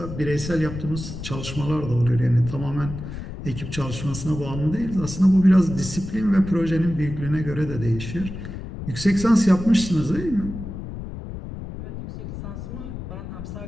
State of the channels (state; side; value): noise; left; rumble, 9 dB below the sound